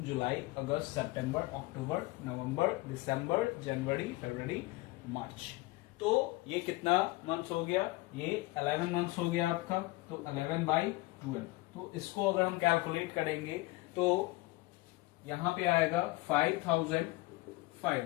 जुलाई, अगस्त, सितंबर, अक्टूबर, नवंबर, दिसंबर, जनवरी, फरवरी, मार्च। तो ये कितना मंथ्स हो गया, ये 11 मंथ्स हो गया आपका। तो 11/12। तो इसको अगर हम कैलकुलेट करेंगे तो यहां पे आएगा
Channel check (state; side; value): quieter; right; 20.8 dB